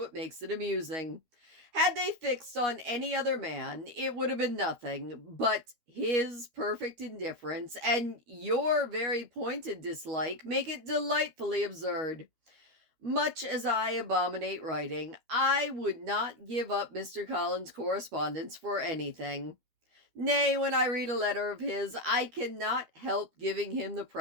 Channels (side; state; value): left; late; 12 ms